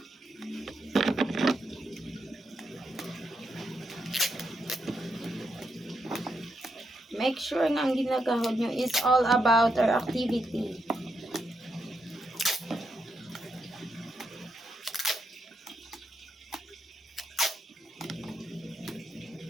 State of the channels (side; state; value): both; normal; correlation 0.81